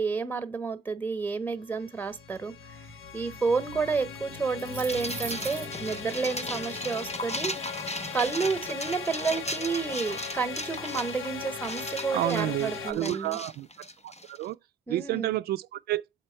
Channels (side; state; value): left; quieter; 3.9 dB